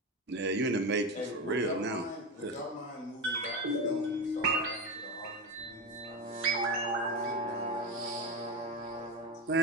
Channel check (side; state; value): both; normal; correlation 0.18